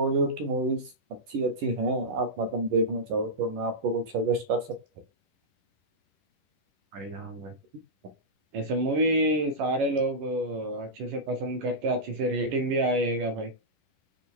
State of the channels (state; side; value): late; left; 10 ms